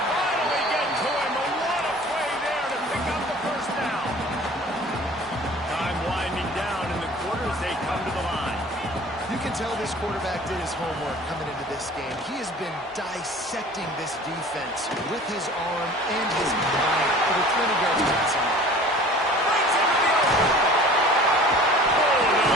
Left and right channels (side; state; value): both; normal; correlation 0.45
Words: finally get to him, but what a play there to pick up the first down. Time winding down in the quarter as they come to the line. You can tell this quarterback did his homework coming into this game. He has been dissecting this defense with his arm and his mind. Over 20 yards passing. Brings him to the open.